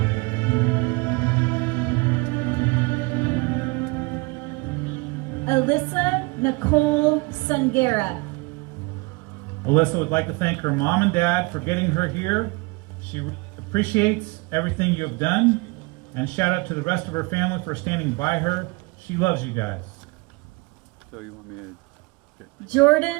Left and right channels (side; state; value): left; quieter; 26.7 dB